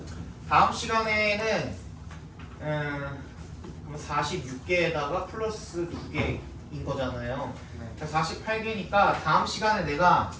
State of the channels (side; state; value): both; identical; correlation 1.00